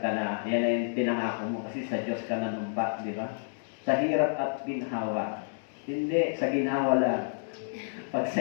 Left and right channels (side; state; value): right; silent; digital silence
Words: yan na yung pinangako mo kasi sa Diyos ka nanumpa, di ba? Sa hirap at ginhawa. Hindi, sa ginhawa lang. Pag